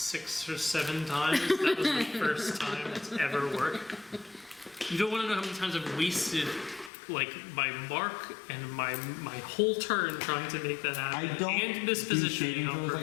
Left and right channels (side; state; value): right; drops out; at 6.9 s